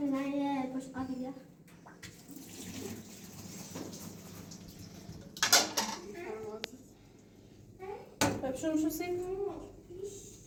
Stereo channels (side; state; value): both; identical; correlation 1.00